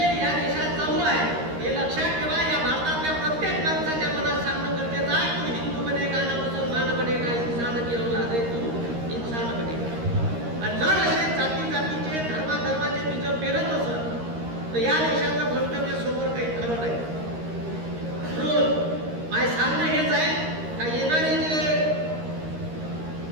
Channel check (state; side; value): late; left; 13 ms